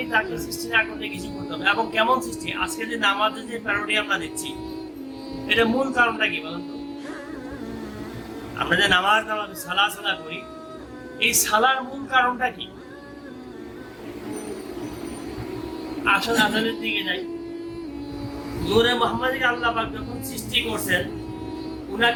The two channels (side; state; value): both; identical; correlation 1.00